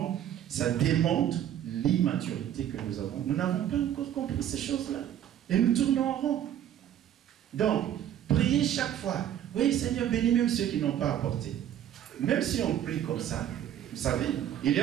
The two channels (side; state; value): left; quieter; 10.7 dB